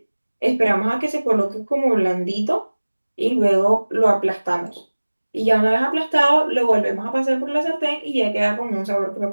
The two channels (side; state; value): both; inverted; correlation -1.00